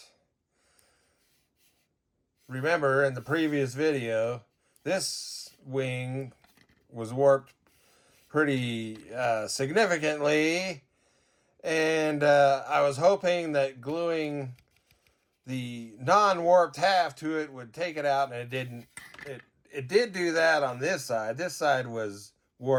Remember in the previous video, this wing was warped pretty significantly. And I was hoping that gluing the non-warped half to it would take it out, and it didn't. It did do that on this side. This side was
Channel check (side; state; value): both; identical; correlation 1.00